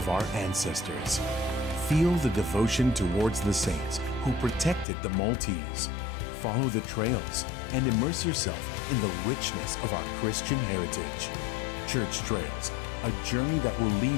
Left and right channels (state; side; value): drops out; right; at 4.9 s